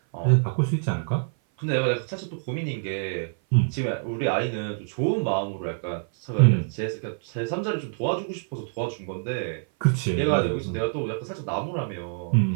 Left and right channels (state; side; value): silent; left; 56 dB below the other